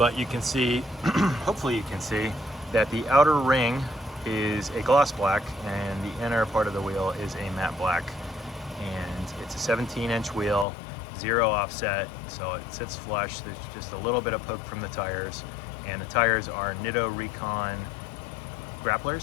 you can see, hopefully you can see, that the outer ring is a gloss black and the inner part of the wheel is a matte black. And it's a 17-inch wheel, 0 offset, so it sits flush. There's just a little bit of poke from the tires, and the tires are Nitto Recon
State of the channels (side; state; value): right; drops out; at 10.7 s